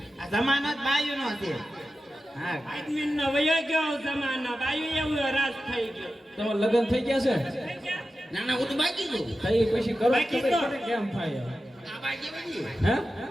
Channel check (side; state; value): both; normal; correlation 0.92